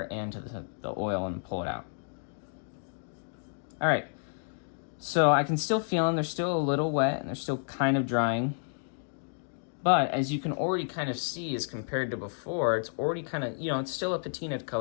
and to the oil and pull it out. All right. So I can still feel them. They're still a little wet, and they're still kind of drying. But as you can already kind of see, as compared to before, it's already kind of, you know, it's still a patina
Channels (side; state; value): right; silent; digital silence